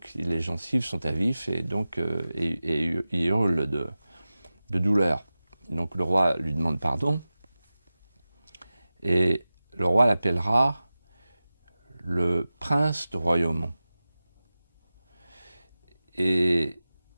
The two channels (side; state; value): both; inverted; correlation -0.95